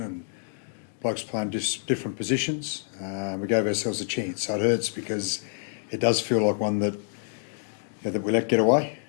blokes playing different positions. We gave ourselves a chance, so it hurts because it does feel like one that that we let get away,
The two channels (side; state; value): right; silent; digital silence